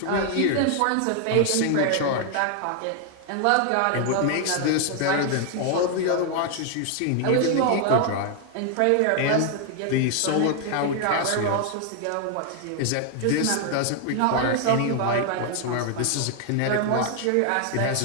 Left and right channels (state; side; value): different; both; correlation 0.00